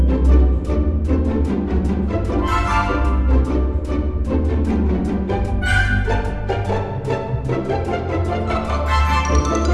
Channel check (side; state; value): both; identical; correlation 1.00